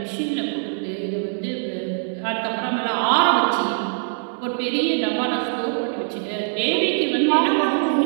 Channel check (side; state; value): left; silent; 64 dB below the other